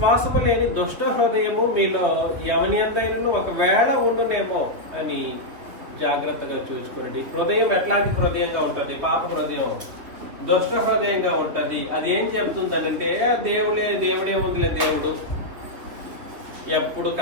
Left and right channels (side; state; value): left; late; 3.5 ms